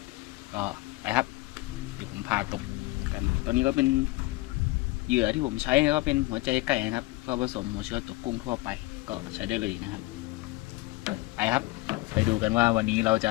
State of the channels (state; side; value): quieter; right; 20.9 dB